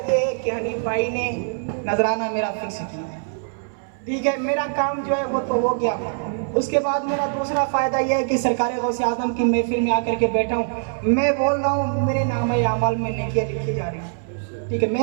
یہ ہے کہ حنیف بھائی نے نذرانہ میرا فکس کیا ہے، ٹھیک ہے، میرا کام جو ہے وہ تو ہو گیا۔ اس کے بعد میرا دوسرا فائدہ یہ ہے کہ سرکار غوث اعظم کی محفل میں آ کر کے بیٹھا ہوں، میں بول رہا ہوں میرے نام اعمال میں نیکیاں لکھی جا رہی ہیں، ٹھیک ہے،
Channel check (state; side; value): silent; left; 61 dB below the other